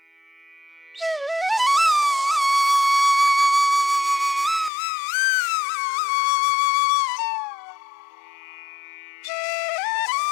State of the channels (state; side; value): drops out; right; at 4.7 s